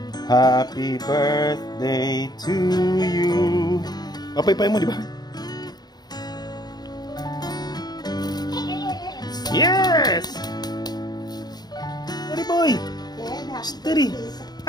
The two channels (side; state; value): right; late; 0.20 ms